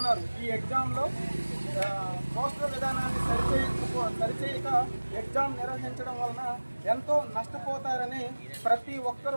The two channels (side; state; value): both; inverted; correlation -1.00